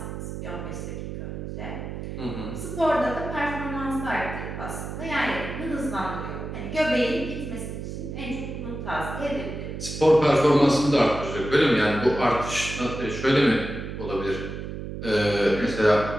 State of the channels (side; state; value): right; noise; hum, 7 dB below the sound